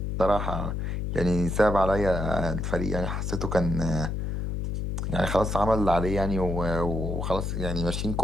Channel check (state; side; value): noise; left; hum, 2 dB below the sound